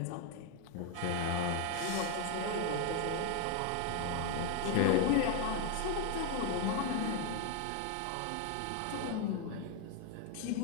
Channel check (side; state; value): both; different; correlation 0.01